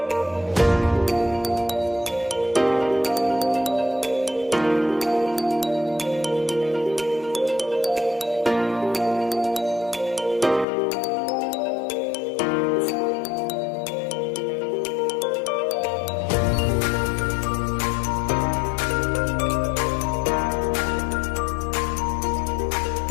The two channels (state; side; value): drops out; right; at 10.7 s